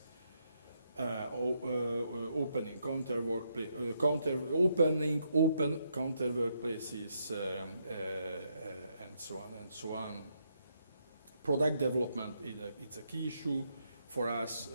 opening counter workplaces, and so on and so on. Product development it's a key issue for us.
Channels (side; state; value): both; inverted; correlation -0.77